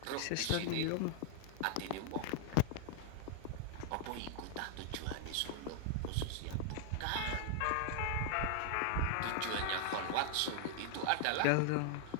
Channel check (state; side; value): different; both; correlation 0.00